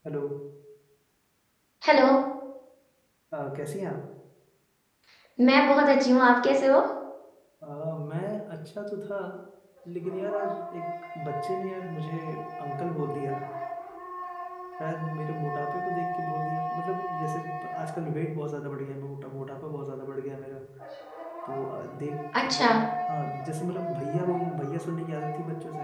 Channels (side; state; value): both; identical; correlation 1.00